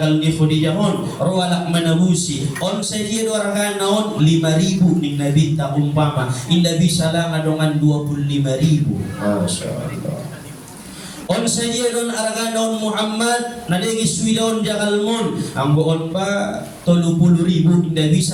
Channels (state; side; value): identical; both; correlation 1.00